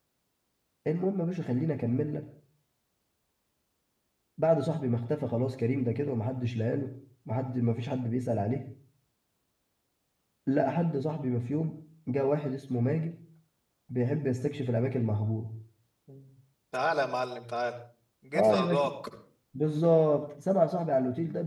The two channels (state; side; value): identical; both; correlation 1.00